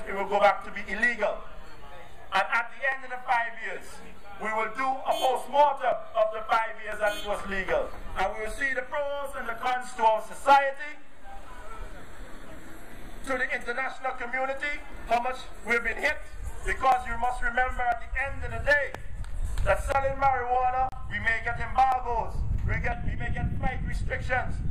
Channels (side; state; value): both; identical; correlation 1.00